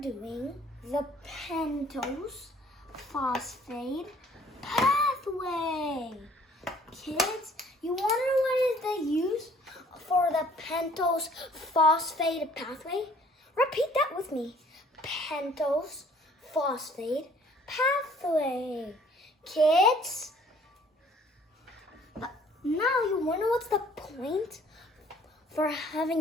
doing the pentose phosphate pathway. Kids, you want to know what is the use for the pentose phosphate pathway? Repeat that with me. Pentose phosphate pathway. Kids, now you wonder what's the point for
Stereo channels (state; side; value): normal; both; correlation 0.57